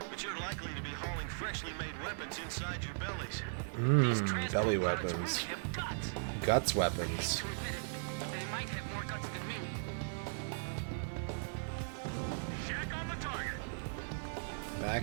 but you're likely to be hauling freshly made weapons inside your bellies. Belly weapons. Guts weapons. They might have more guts than me. Shack on the target.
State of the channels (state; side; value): silent; left; digital silence